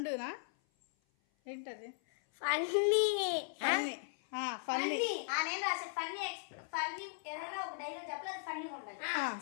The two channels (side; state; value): right; silent; 53 dB below the other